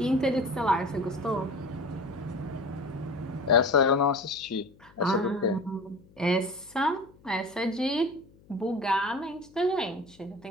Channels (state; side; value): noise; left; hum, 27 dB below the sound